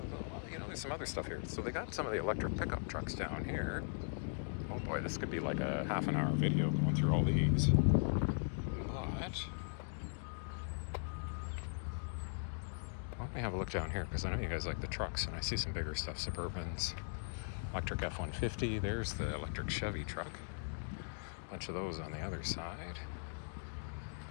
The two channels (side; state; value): right; silent; digital silence